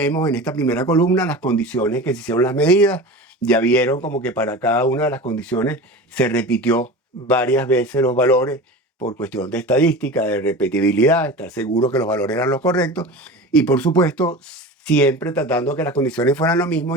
en esta primera columna las condiciones que se hicieron las medidas. Ya vieron como que para cada una de las condiciones se repitió varias veces los valores por cuestión de estadística, de repetibilidad, estar seguro que los valores eran los correctos. Y por supuesto, siempre tratando que las condiciones fueran lo mismo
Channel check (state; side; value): normal; both; correlation 0.32